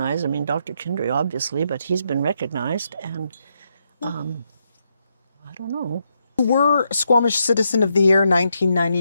I mean, Dr. Kindry, obviously, but he's been recognized. And I don't know. You were Squamish Citizen of the Year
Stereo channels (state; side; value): inverted; both; correlation -0.80